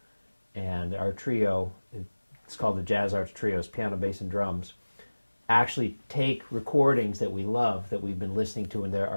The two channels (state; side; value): inverted; both; correlation -1.00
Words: And our trio, it's called the Jazz Arts Trios, piano, bass, and drums, actually take recordings that we love, that we've been listening to,